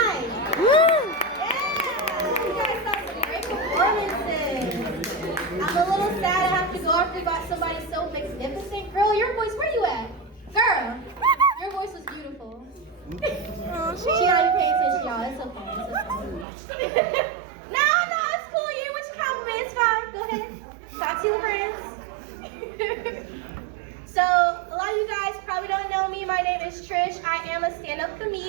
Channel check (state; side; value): drops out; left; at 16.4 s